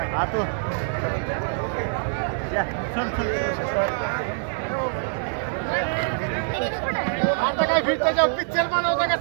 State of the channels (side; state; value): left; silent; 62 dB below the other